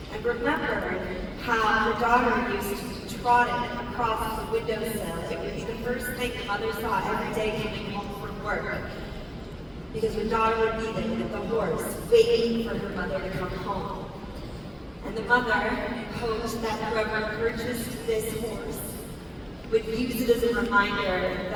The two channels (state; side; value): identical; both; correlation 1.00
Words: and remembered how her daughter used to trot it across the windowsill. It would be the first thing the mother saw every day coming home from work, because her daughter would be there with the horse, waiting for her mother to come home. And the mother hoped that whoever purchased this horse would use it as a reminder